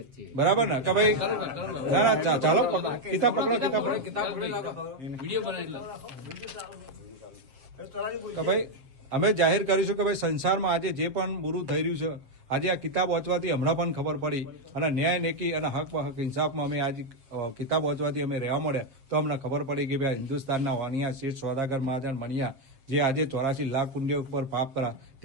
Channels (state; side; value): late; left; 7.6 ms